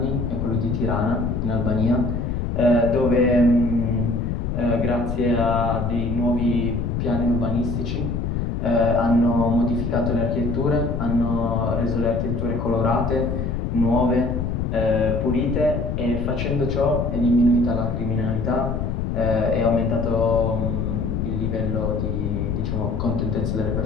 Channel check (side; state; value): left; noise; rumble, 1 dB below the sound